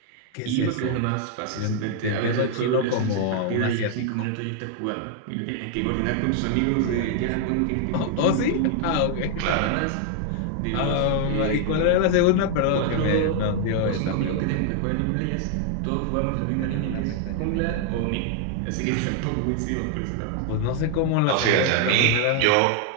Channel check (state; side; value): different; both; correlation 0.00